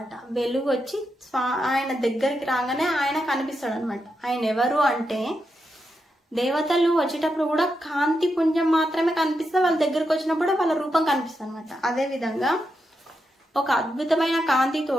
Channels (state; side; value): normal; both; correlation 0.85